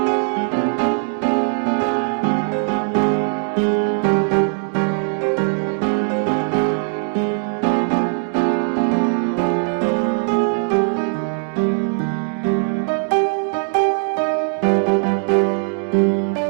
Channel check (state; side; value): silent; left; 56 dB below the other